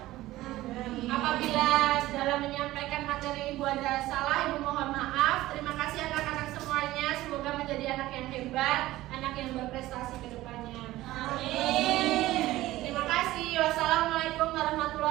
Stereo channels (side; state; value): left; quieter; 16.5 dB